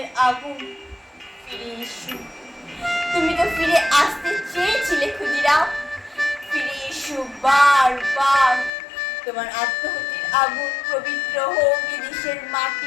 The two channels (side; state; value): right; drops out; at 8.7 s